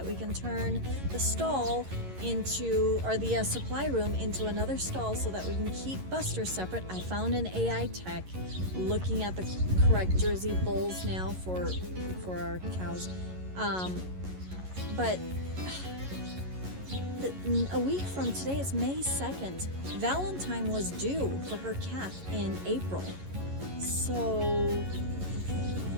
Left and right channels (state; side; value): late; left; 11 ms